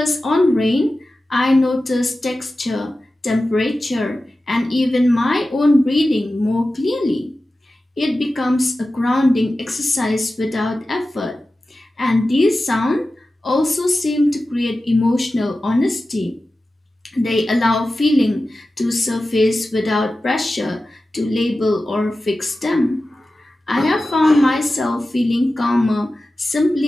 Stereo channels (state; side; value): normal; both; correlation 0.94